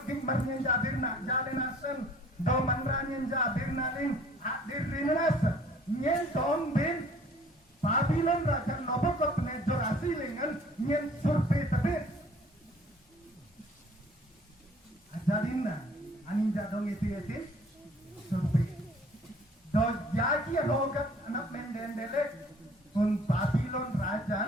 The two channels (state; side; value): normal; both; correlation 0.54